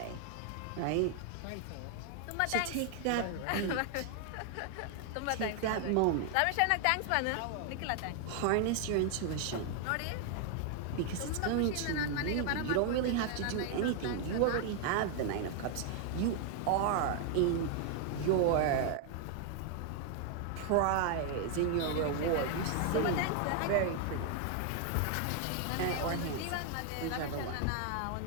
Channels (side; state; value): both; different; correlation 0.00